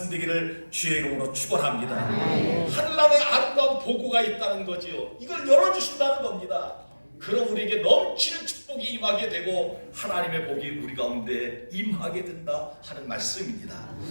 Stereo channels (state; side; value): inverted; both; correlation -1.00